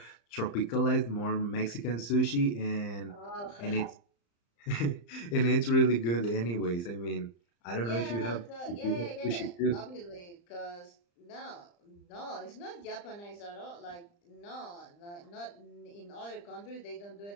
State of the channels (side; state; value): right; late; 35 ms